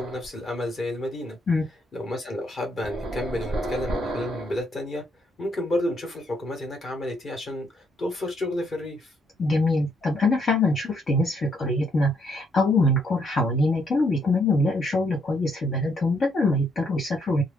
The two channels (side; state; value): both; normal; correlation 0.72